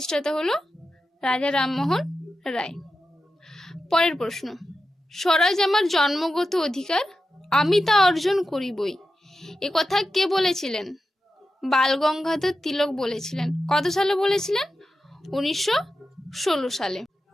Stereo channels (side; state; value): both; normal; correlation 0.91